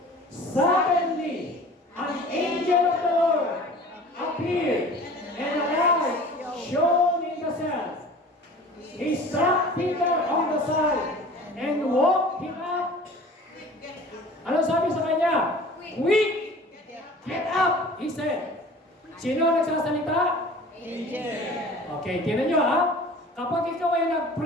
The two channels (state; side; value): normal; both; correlation 0.43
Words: Suddenly, an angel of the Lord appeared, and a light shone in the cell. He struck Peter on the side and woke him up. Ano sabi sa kanya? Quick! Get up! He said. Sino nagsasalita? Angel. Okay, tinan nyo ha. Kapag ikaw ay